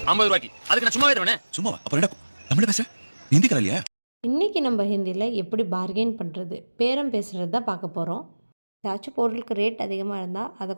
50 ரூபாய்க்கு. அதுக்கு நான் சும்மாவே தருவேனே. சும்மாவா? அப்புறம் என்ன தமிழ பேச? ஹிந்தி கரை இல்லையா? இன்றைக்கி நம்ம ஹிந்தியில் எப்படி பார்கெயின் பண்ணுறது, பேரம் பேசுகிறது தான் பார்க்க போகிறோம். ஏதாச்சும் பொருளுக்கு ரேட் அதிகமாக இருந்தால் அதை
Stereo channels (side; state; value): both; inverted; correlation -1.00